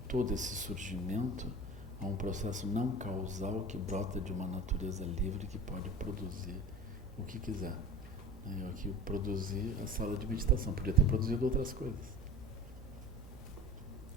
todo esse surgimento a um processo não causal que brota de uma natureza livre que pode produzir o que quiser. Eu aqui produzi a sala de meditação, podia ter produzido outras coisas.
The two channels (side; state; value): both; normal; correlation 0.37